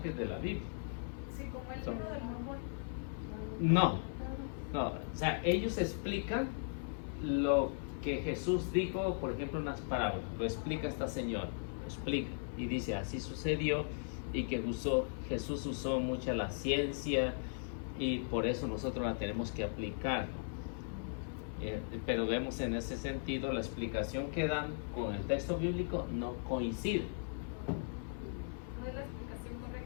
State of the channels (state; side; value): silent; right; 53 dB below the other